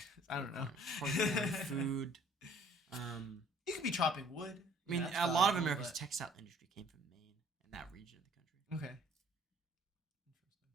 I don't know. Food. You could be chopping wood. I mean, a lot of America's textile industry came from Maine and that region of the country. Okay.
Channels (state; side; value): normal; both; correlation 0.57